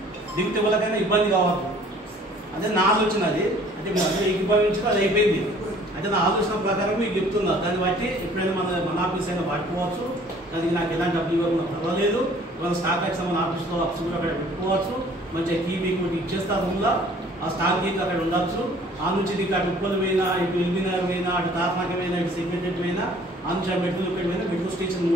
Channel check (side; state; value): both; normal; correlation 0.54